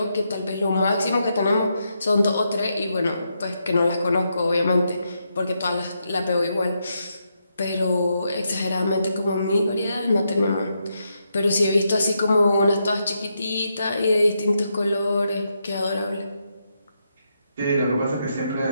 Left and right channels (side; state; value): both; inverted; correlation -0.81